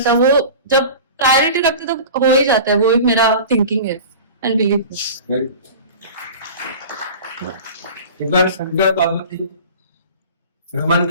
था। वो जब प्रायोरिटी रखते तो हो ही जाता है, वो मेरा थिंकिंग है एंड बिलीव। एक बार शंकर पार्वती भ्रमण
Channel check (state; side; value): inverted; both; correlation -0.37